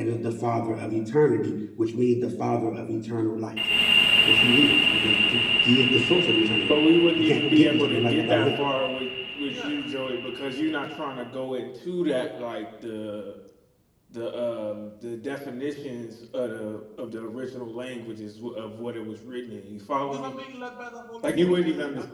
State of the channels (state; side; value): identical; both; correlation 1.00